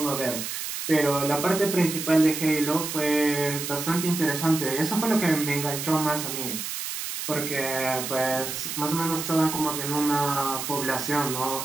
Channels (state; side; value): noise; right; hiss, 5 dB below the sound